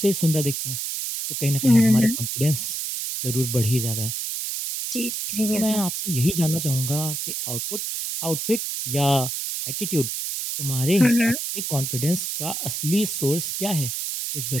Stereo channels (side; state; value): right; noise; hiss, 3 dB below the sound